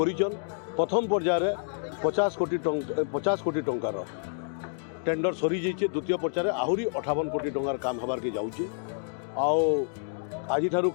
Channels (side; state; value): right; silent; digital silence